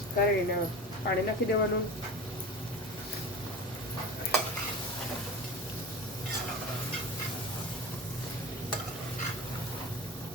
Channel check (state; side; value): normal; both; correlation 0.31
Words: કરીને પાણી નાખી દેવાનું.